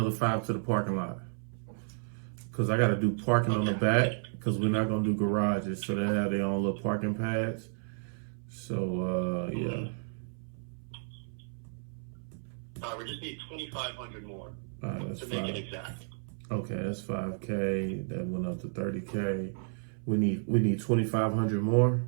5 to the parking lot. Because I got to do parking on the back. because we're not gonna do garages, so they have their own little parking pads. So yeah. We just need 2,500 more That's to make it exact. Okay, that's $5K. That went up to $30K. We need 2,500 more.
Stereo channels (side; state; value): left; silent; 56 dB below the other